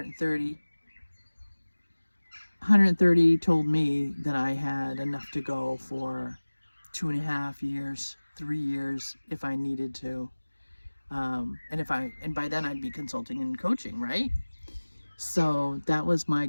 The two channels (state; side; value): inverted; both; correlation -1.00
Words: told me that I had enough to go for 2.5 years, 3 years, if I needed to. And by then I'd be consulting and coaching, right? So that was my